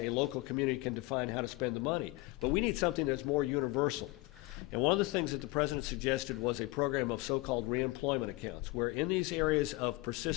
local community can define how to spend the money. But we need something that's more universal. And one of the things that the president suggested was a program of so-called reemployment accounts, where in these areas of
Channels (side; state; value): right; quieter; 21.3 dB